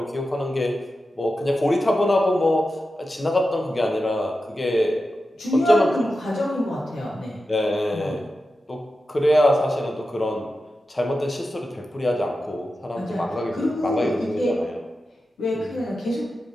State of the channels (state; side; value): normal; both; correlation 0.91